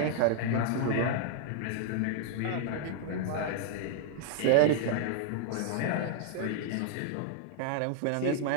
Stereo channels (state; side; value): different; both; correlation -0.01